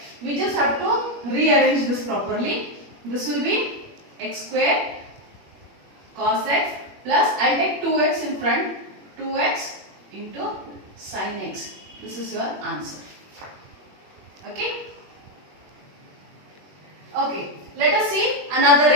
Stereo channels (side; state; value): left; late; 21 ms